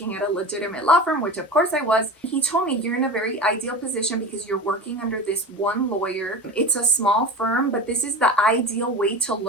at a legitimate law firm, which of course I was. He told me, you're in a very ideal position because you're working under this one lawyer. It's a small firm, but this is the ideal way to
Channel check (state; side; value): normal; both; correlation 0.30